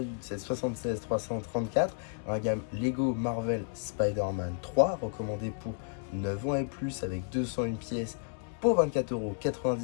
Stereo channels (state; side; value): silent; right; 57 dB below the other